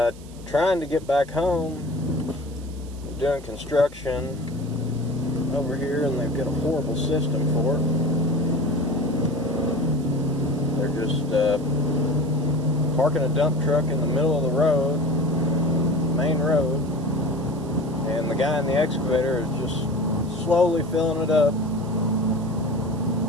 trying to get back home. I'm doing construction over here and they've got a horrible system for it. They're just parking a dump truck in the middle of the road, main road, and the guy in the excavator is just slowly filling it up.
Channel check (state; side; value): noise; right; hiss, 23 dB below the sound